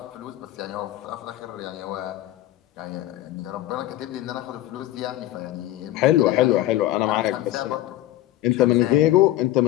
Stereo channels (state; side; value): quieter; right; 14.7 dB